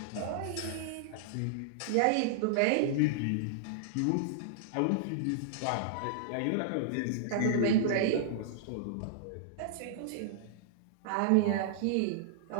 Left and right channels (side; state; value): both; different; correlation -0.01